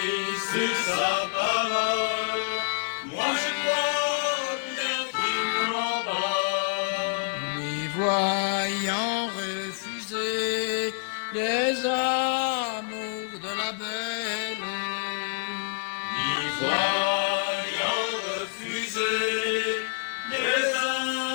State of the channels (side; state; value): right; silent; 60 dB below the other